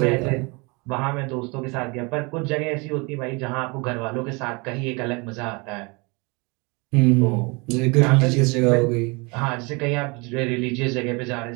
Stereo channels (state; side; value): quieter; left; 28.6 dB